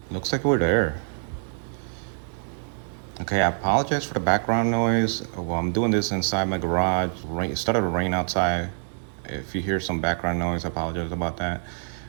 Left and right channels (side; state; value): left; silent; digital silence